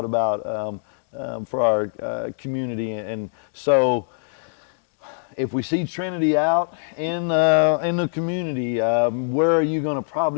about for our community. And so, if we see Trinity out in the community, where are you going to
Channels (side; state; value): right; silent; digital silence